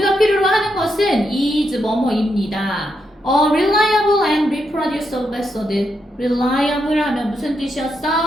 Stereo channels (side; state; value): both; normal; correlation 0.82